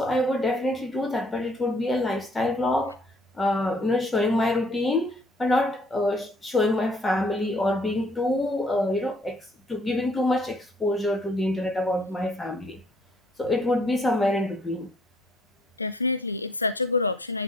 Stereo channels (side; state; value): both; normal; correlation 0.63